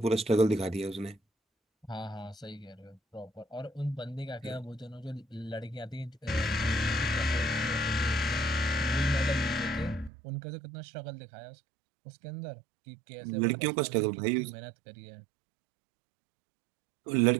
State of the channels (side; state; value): left; drops out; at 10.1 s